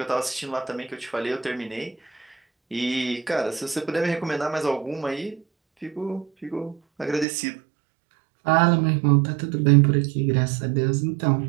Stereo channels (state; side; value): drops out; left; at 7.2 s